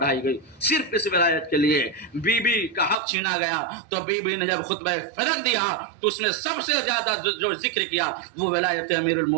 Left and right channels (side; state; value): left; drops out; at 3.0 s